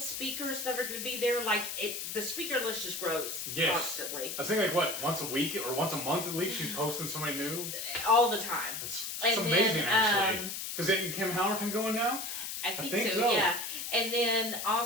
that are going to be there. The speaker list just grows constantly. I think once a week or once a month at least she's posting somebody new. All the time. It's amazing actually. Because isn't Kim Howerton going now? I think so, yeah. And then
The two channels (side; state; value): left; noise; hiss, 5 dB below the sound